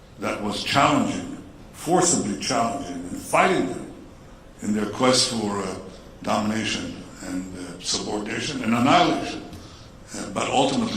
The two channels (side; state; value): both; identical; correlation 1.00